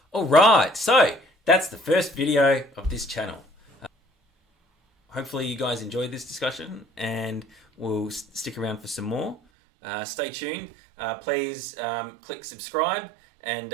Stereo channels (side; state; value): left; drops out; at 9.3 s